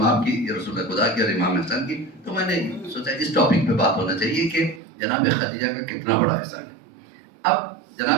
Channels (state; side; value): drops out; left; at 4.8 s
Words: کی، رسول خدا کی اور امام حسن کی، تو میں نے سوچا اس ٹاپک پہ بات ہونا چاہیے کہ جناب خدیجہ کا کتنا بڑا حصہ ہے۔ اب